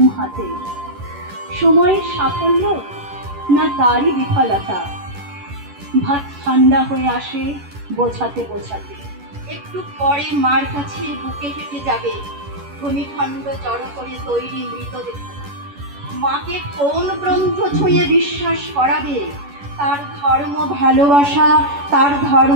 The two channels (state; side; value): late; left; 11 ms